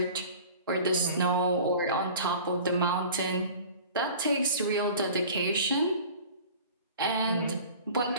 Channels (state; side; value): inverted; both; correlation -0.42